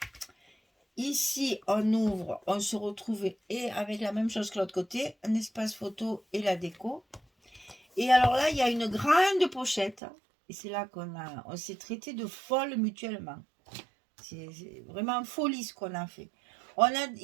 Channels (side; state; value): left; drops out; at 10.0 s